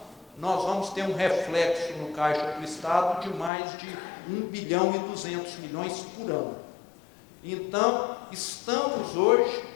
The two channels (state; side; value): drops out; right; at 3.5 s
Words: nós vamos ter um reflexo no caixa do estado de mais de 1 bilhão e 200 milhões por ano. Então, estamos hoje